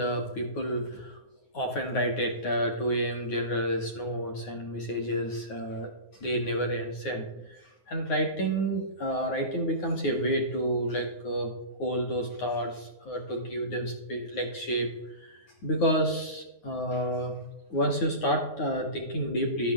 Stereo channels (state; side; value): late; right; 9.5 ms